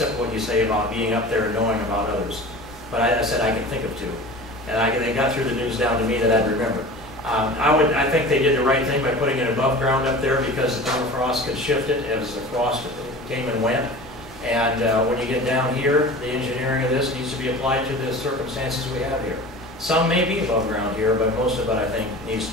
what you say about being up there and knowing about others, but I said I can think of 2, and they got through the news down to me that I'd remember. I think they did the right thing by putting it above ground up there because the permafrost could shift it as the frost came and went. And when you get down here, the engineering of this needs to be applied to the circumstances we have here. Some may be above ground here, but most of it, I think, needs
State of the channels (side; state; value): both; normal; correlation 0.37